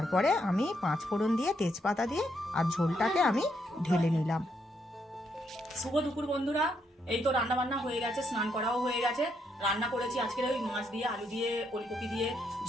আমি 5 ফোড়ন দিয়ে তেজপাতা দিয়ে আর ঝোলটাকে আমি ঢেলে নিলাম। শুভ দুপুর বন্ধুরা, এই তো রান্না বান্না হয়ে গেছে, স্নান করাও হয়ে গেছে। রান্না করেছি আজকের ওই মাছ দিয়ে আলু দিয়ে ওলকপি দিয়ে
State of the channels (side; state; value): both; normal; correlation 0.76